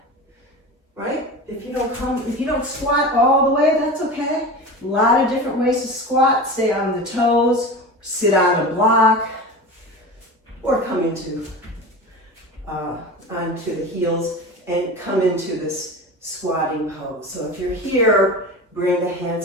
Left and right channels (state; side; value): normal; both; correlation 0.30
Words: right? If you don't squat all the way, that's okay. A lot of different ways to squat. Stay on the toes, sit on a block, or come into onto the heels and come into this squatting pose. So if you're here, bring the